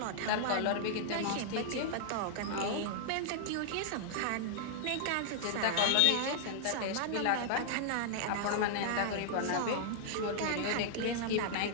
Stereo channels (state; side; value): different; both; correlation -0.01